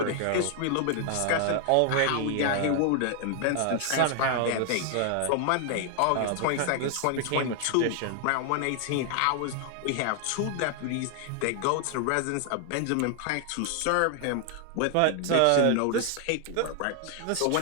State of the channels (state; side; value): different; both; correlation 0.00